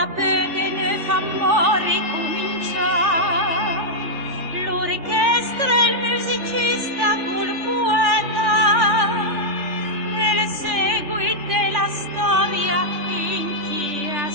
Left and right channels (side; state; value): left; late; 3.4 ms